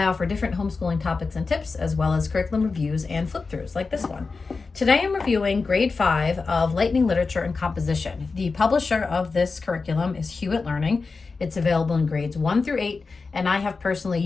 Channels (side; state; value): right; quieter; 4.3 dB